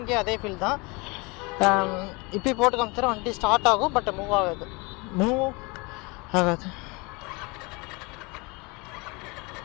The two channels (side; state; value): right; quieter; 27.3 dB